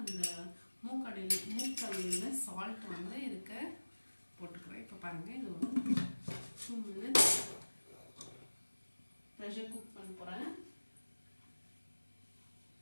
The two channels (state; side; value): inverted; both; correlation -1.00